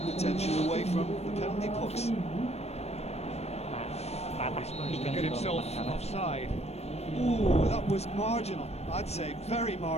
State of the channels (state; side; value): late; right; 0.31 ms